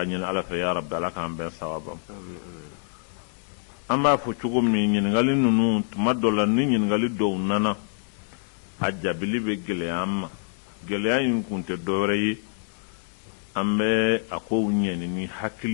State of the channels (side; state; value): right; silent; digital silence